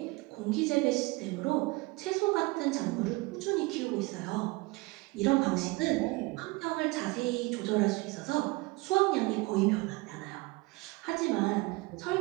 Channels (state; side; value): quieter; left; 23.9 dB